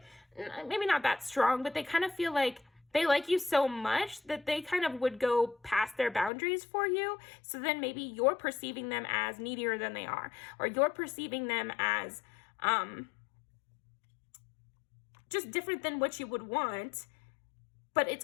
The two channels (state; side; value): drops out; right; at 6.3 s